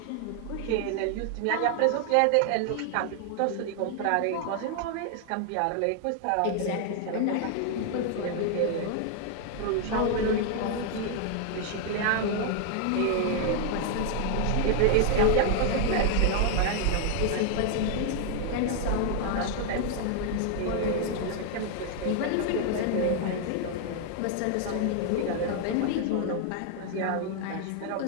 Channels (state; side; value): different; both; correlation 0.00